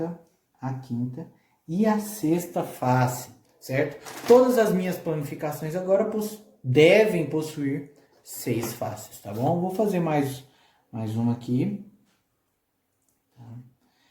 a quinta e a sexta face, certo? Todas as minhas planificações agora devem possuir 6 faces, tá bom? Vou fazer mais uma aqui.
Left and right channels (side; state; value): both; identical; correlation 1.00